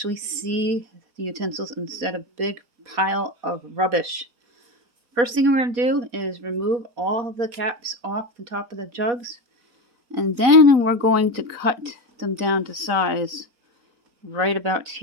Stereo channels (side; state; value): left; late; 4.2 ms